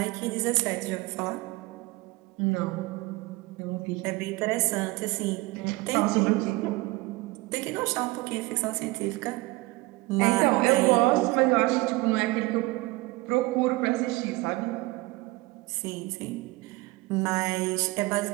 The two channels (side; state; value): left; quieter; 22.2 dB